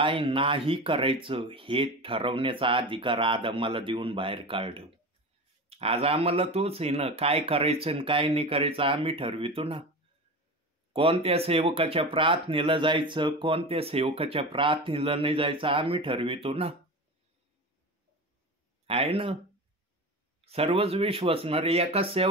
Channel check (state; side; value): normal; both; correlation 0.28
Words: नाही करायचं हे ठरवण्याचा अधिकार आदमाला देऊन बाहेर काढलं. आज आम्हाला तोच आहे ना, काय करायचं आणि काय नाही करायचं आम्ही ठरवितो ना. कोणत्या सेवकाच्या प्रार्थनेला जायचं, कोणत्या सेवकाच्या प्रार्थनेला नाही जायचं आम्ही ठरवितो ना, आहे ना. सर्वच विश्वासणारे एकाच